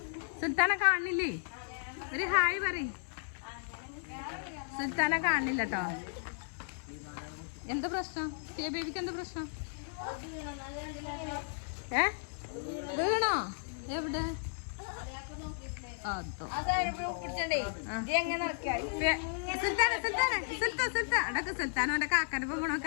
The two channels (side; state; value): right; silent; 55 dB below the other